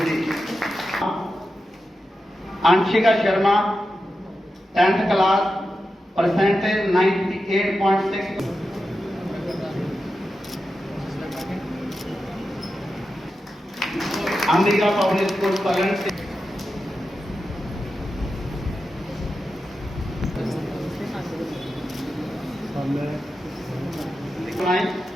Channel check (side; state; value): both; normal; correlation 0.90